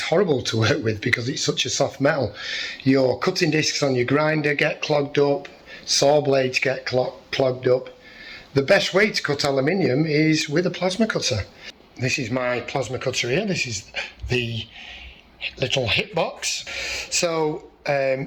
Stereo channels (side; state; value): both; identical; correlation 1.00